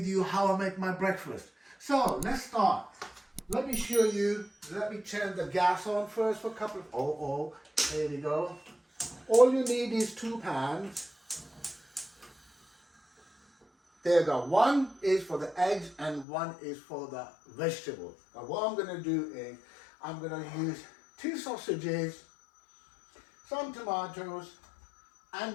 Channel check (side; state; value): right; drops out; at 16.2 s